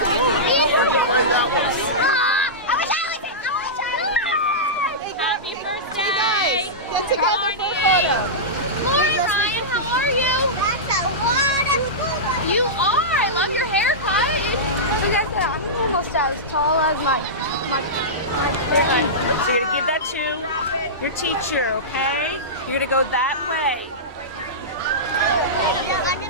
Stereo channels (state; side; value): normal; both; correlation -0.15